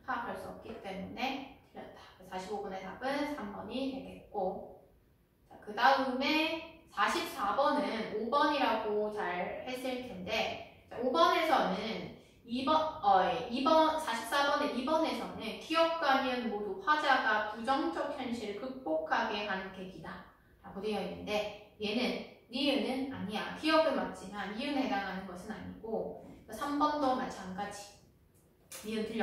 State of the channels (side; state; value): both; identical; correlation 1.00